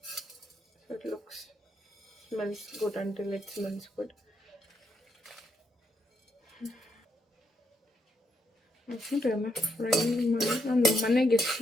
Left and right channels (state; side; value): normal; both; correlation 0.78